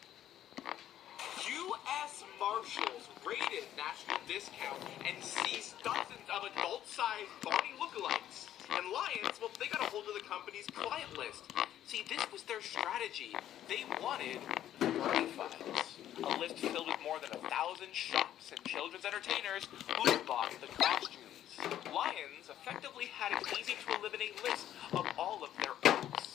U.S. Marshals raided National Discount and seized dozens of adult-sized Barney lookalikes. And Lions, well, they got a hold of the company strategy. They wanted Bernie files, a list filled with more than 1,000 shops and children's entertainers who bought the costumes. Lions effectively had an easy-to-eliminate list of all of their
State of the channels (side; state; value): right; quieter; 11.6 dB